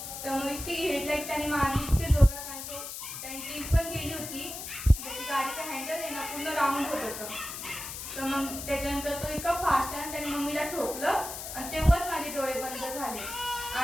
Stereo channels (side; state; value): left; noise; hiss, 8 dB below the sound